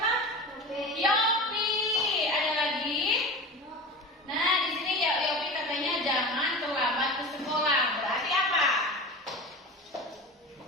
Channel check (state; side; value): normal; both; correlation 0.31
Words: Yopi. Ada lagi? Nah, di sini ya Yopi katanya jangan terlambat ke sekolah. Berarti apa?